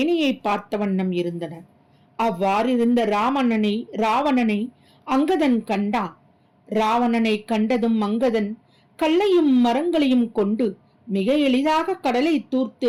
பார்த்த வண்ணம் இருந்தன. அவ்வாறிருந்த ராவணனை அங்கதன் கண்டான். ராவணனை கண்டதும் அங்கதன் கல்லையும் மரங்களையும் கொண்டு மிக எளிதாக கடலை தூர்த்து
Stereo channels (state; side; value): identical; both; correlation 1.00